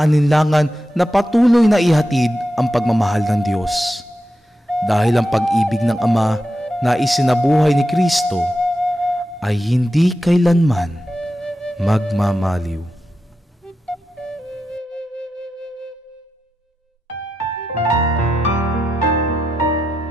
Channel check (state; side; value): normal; both; correlation 0.88